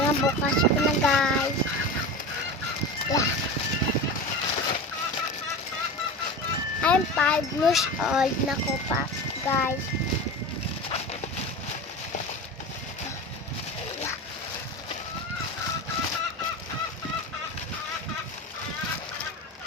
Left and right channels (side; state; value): both; normal; correlation 0.28